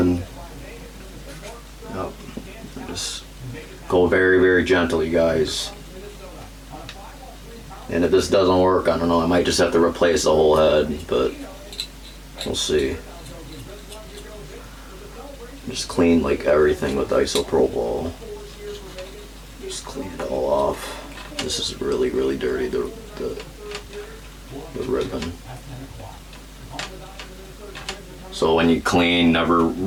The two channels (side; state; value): both; identical; correlation 1.00